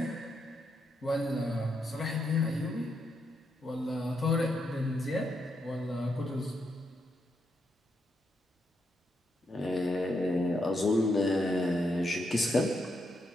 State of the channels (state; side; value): normal; both; correlation 0.80